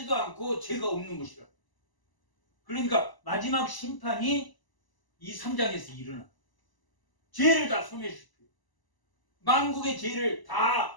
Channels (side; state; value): right; late; 1.0 ms